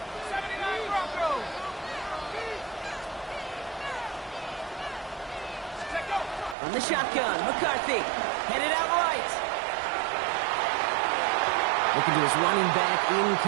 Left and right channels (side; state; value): left; drops out; at 6.6 s